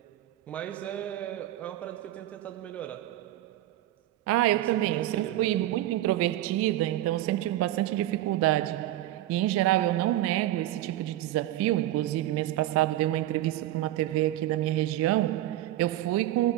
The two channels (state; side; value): quieter; left; 14.4 dB